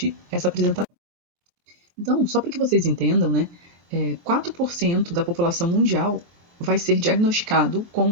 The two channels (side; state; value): left; late; 23 ms